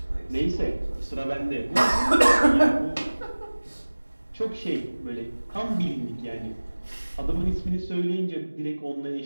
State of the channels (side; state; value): both; inverted; correlation -1.00